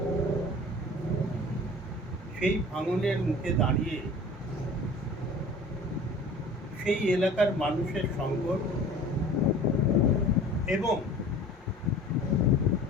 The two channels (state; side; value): normal; both; correlation 0.44